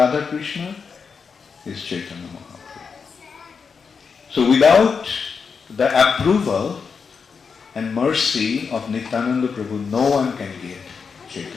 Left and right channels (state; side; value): quieter; right; 5.7 dB